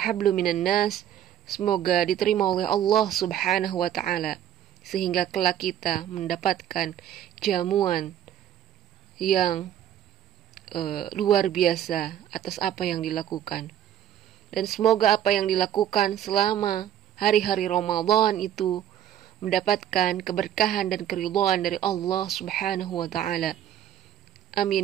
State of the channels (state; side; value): quieter; left; 11.0 dB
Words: hablu minan nas, semoga diterima oleh Allah subhanahu wa ta'ala, sehingga kelak kita mendapatkan jamuan yang luar biasa atas apa yang dilakukan. Dan semoga apa yang dilakukan selama hari-hari Ramadan itu mendapatkan keberkahan dan keridhaan dari Allah subhanahu wa ta'ala.